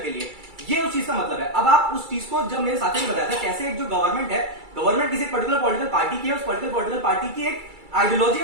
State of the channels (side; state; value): left; late; 2.3 ms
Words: लिए, ये उस चीज का मतलब है। अब आप उस चीज को, जब मेरे साथी ने बताया था कैसे एक जो गवर्नमेंट है, गवर्नमेंट किसी पर्टिकुलर पॉलिटिकल पार्टी की है, उस पर्टिकुलर पॉलिटिकल पार्टी की एक आइडियोलॉजी